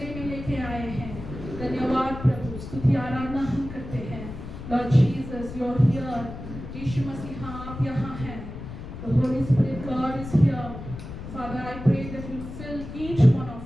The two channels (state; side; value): noise; left; rumble, 10 dB below the sound